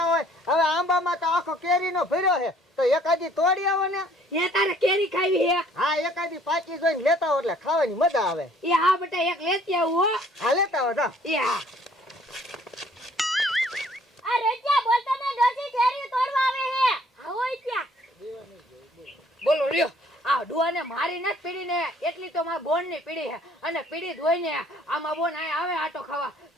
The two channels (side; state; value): both; normal; correlation 0.59